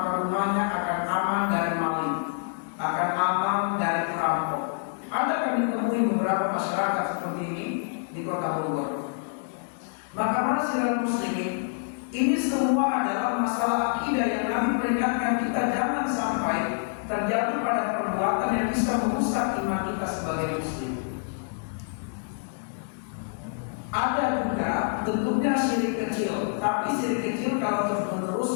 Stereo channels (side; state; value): right; silent; digital silence